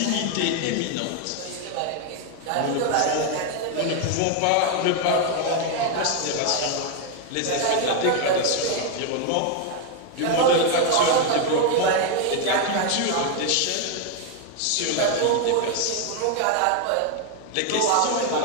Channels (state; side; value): different; both; correlation 0.01